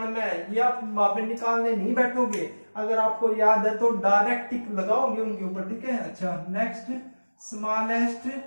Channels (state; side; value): inverted; both; correlation -1.00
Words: ये आप वापस निकालने नहीं बैठोगे, अगर आपको याद है तो डायरेक्ट टिक लगाओगे उनके ऊपर। ठीक है, अच्छा next smallest